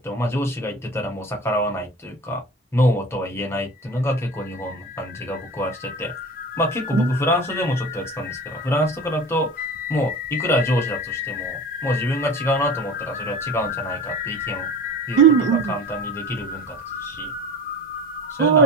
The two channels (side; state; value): both; normal; correlation 0.36